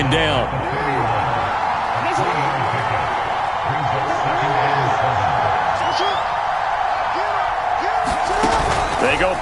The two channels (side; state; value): both; identical; correlation 1.00